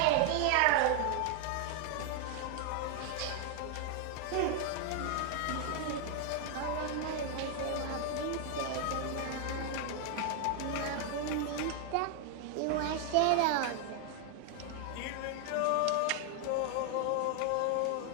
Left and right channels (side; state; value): both; different; correlation 0.00